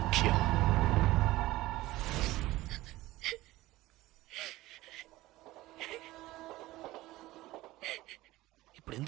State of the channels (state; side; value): quieter; left; 17.6 dB